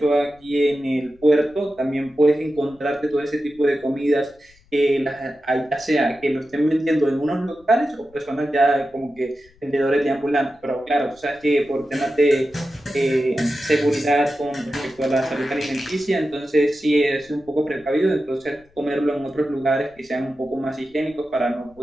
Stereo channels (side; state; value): left; noise; rumble, 29 dB below the sound